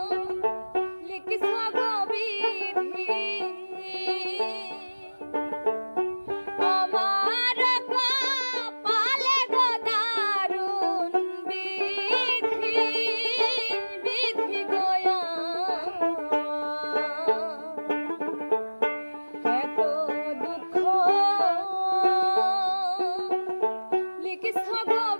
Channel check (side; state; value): both; inverted; correlation -1.00